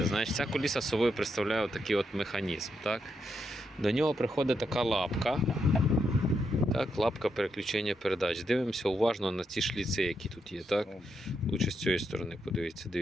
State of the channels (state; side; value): normal; both; correlation 0.81